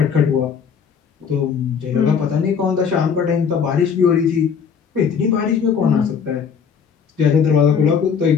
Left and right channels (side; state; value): right; quieter; 6.7 dB